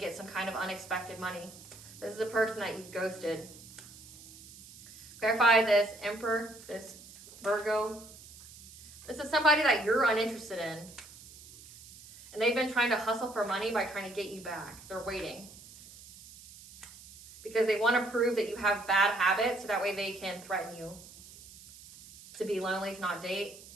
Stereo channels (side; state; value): right; noise; hiss, 18 dB below the sound